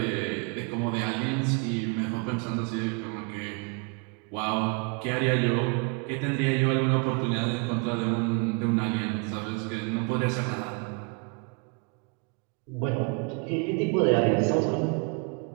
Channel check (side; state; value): left; quieter; 32.0 dB